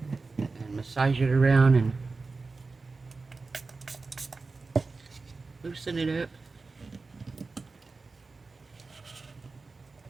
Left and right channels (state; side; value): quieter; left; 4.0 dB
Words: And massage it around and loosen it up.